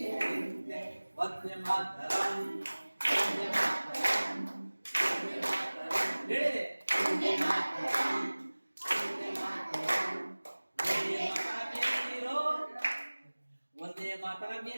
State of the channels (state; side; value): inverted; both; correlation -1.00